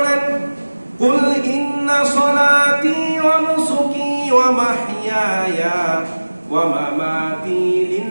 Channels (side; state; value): both; inverted; correlation -1.00